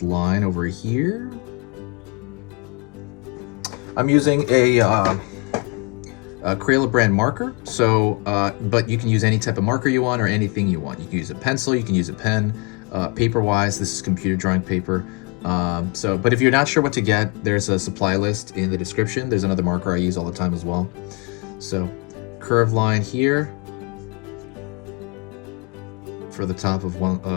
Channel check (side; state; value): right; quieter; 31.0 dB